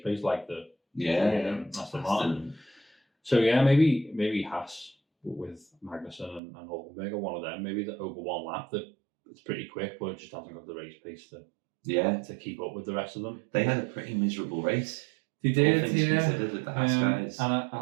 pace, like the Aston Martin. So, yeah, maybe Haas with Magnussen and Hulkenberg are one of them. Maybe over one lap that it's pretty quick, but it just hasn't got the race pace to keep up with the rest of them. They had a pretty miserable race. They did, with the Haas guys. And I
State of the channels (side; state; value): left; drops out; at 6.4 s